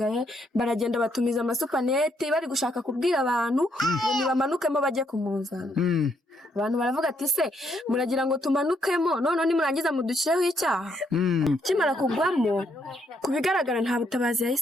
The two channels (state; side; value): normal; both; correlation 0.74